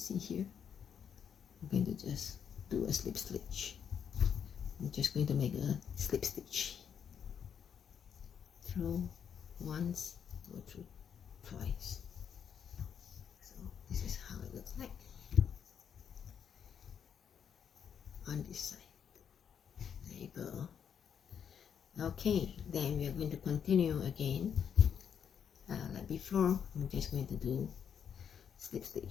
here, I'm going to just do a slip stitch. I'm just going to make a slip stitch. Through once, go through twice. So this is how it looks like on this side. There you go. Okay, then we are going to continue again. Like before, I'm just going to do slip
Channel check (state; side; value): quieter; right; 7.9 dB